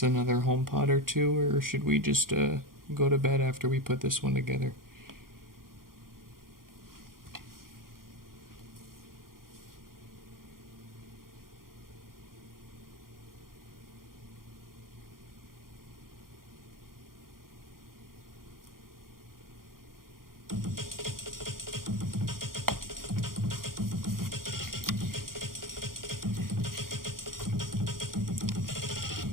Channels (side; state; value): left; late; 0.91 ms